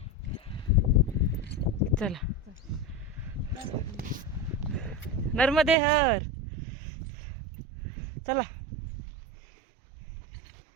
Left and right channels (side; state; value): left; drops out; at 5.8 s